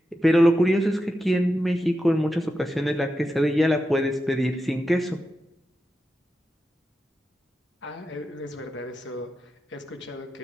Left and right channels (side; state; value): both; normal; correlation 0.89